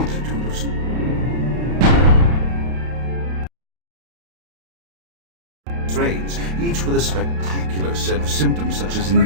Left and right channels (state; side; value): late; left; 32 ms